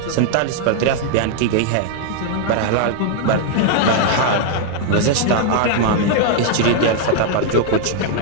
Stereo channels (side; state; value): both; different; correlation 0.00